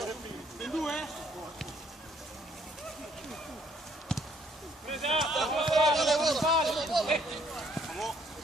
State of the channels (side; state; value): both; normal; correlation 0.65